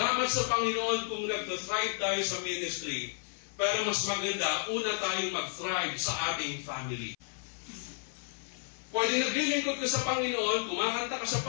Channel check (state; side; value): silent; right; 56 dB below the other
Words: sa Panginoon kung nag-thrive tayo sa ministry. Pero mas maganda, una tayong mag-thrive sa ating family. Pwede naglilingkod ka sa Panginoon, kumakanta ka sa